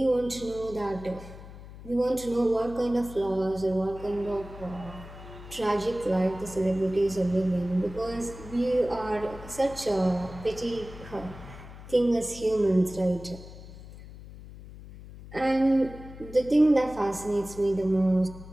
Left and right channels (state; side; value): noise; left; hum, 15 dB below the sound